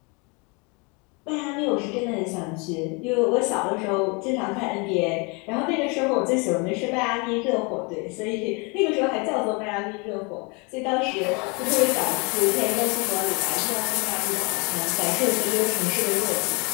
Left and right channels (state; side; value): quieter; right; 30.7 dB